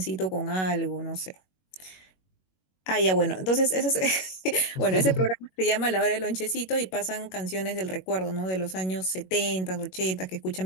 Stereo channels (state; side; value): late; right; 21 ms